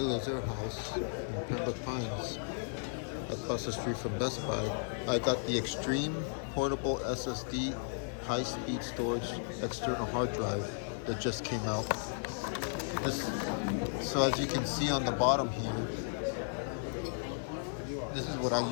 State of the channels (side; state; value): right; silent; digital silence